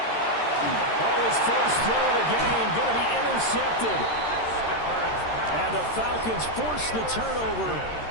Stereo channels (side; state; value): right; late; 13 ms